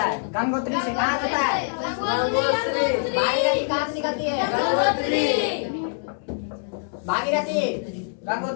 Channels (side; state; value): right; silent; digital silence